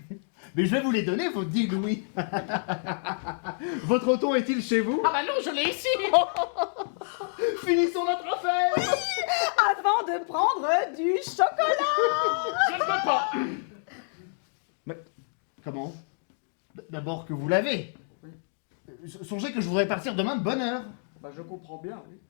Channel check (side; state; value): right; silent; digital silence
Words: Mais je vais vous les donner, vos 10 louis. Votre Othon est-il chez vous? Ah bah non, je l'ai ici. Finissons notre affaire. Avant de prendre du chocolat. Je ne peux pas. Mais comment? D'abord que vous l'avez. Songez que je voudrais partir demain de bonne heure. Bah je comprends bien, oui.